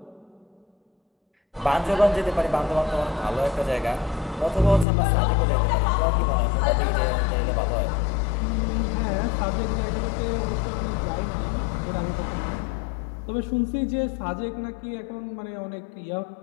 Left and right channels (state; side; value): drops out; right; at 4.9 s